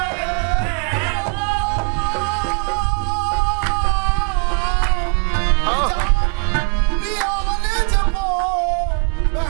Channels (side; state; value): left; quieter; 38.8 dB